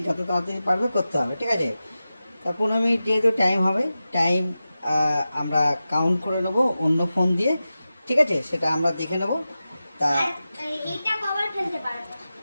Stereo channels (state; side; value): inverted; both; correlation -0.94